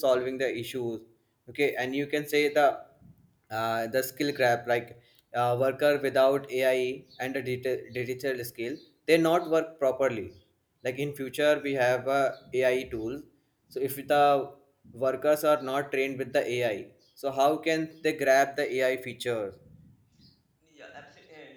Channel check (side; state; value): both; identical; correlation 1.00